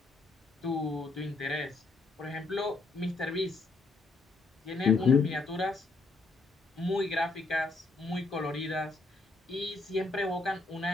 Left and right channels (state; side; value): quieter; right; 3.5 dB